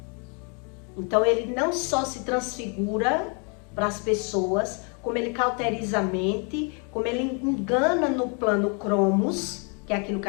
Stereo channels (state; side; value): quieter; right; 36.5 dB